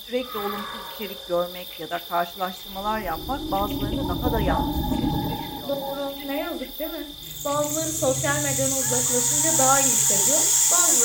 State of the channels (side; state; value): both; identical; correlation 1.00